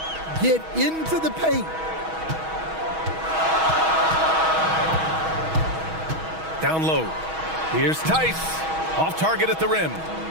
Get into the paint. Down low. Here's Tice. Off target at the rim.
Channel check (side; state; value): left; late; 6.3 ms